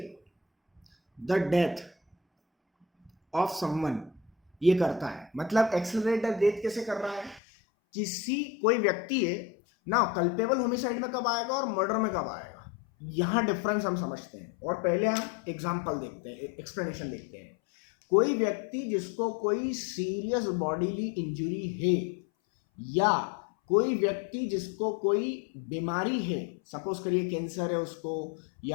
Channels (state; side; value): drops out; right; at 7.4 s